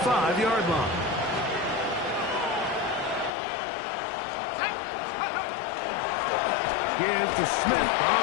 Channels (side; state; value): right; drops out; at 3.3 s